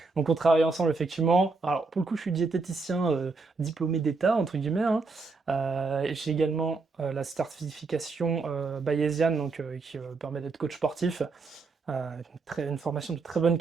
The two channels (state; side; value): quieter; left; 4.1 dB